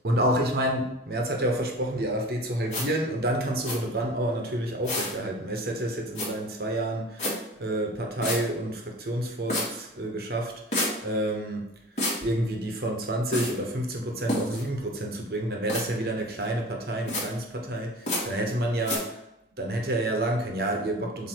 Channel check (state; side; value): normal; both; correlation 0.39